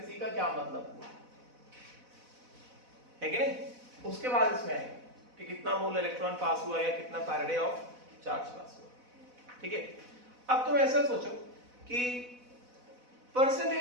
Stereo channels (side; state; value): left; late; 4.0 ms